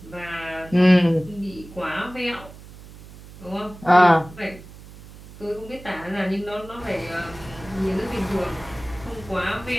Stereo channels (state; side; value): noise; right; hum, 18 dB below the sound